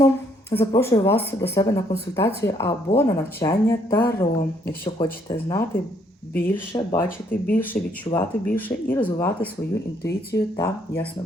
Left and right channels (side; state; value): both; normal; correlation 0.68